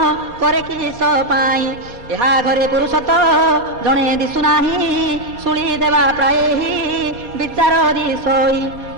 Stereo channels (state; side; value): late; left; 4.2 ms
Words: କରେ କିସ ପାଇଁ। ଏହା ଘରେ ପୁରୁଷ ତ ଜଣେ ଦିଶୁନାହିଁ ଶୁଳି ଦେବା ପ୍ରାୟ ବିଚାର ଦିଶୋଇ।